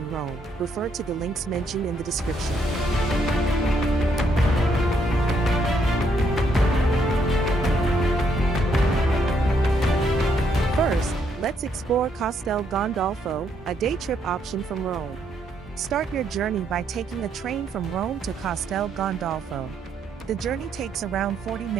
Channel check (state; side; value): normal; both; correlation 0.73